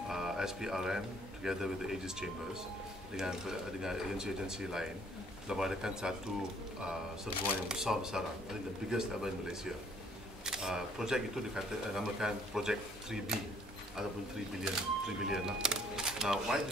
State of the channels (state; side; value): normal; both; correlation 0.61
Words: SPRM together with the Aegis Chambers dengan agensi-agensi lain telah mengadakan satu serbuan yang besar-besaran, I think the biggest ever in Malaysia. Projek itu dinamakan projek 3B ataupun 3 billion lah. Now,